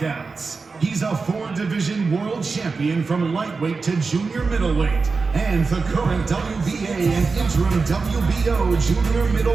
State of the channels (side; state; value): left; quieter; 4.4 dB